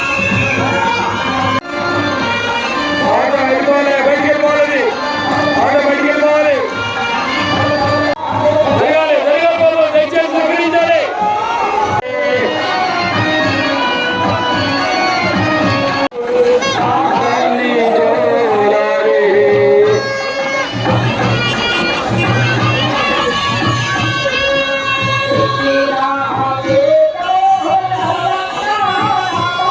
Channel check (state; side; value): identical; both; correlation 1.00